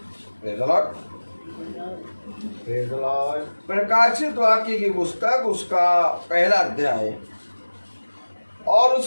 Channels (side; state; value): both; inverted; correlation -1.00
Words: praise the Lord, praise the Lord. प्रकाशित वाक्य की पुस्तक, उसका पहला अध्याय और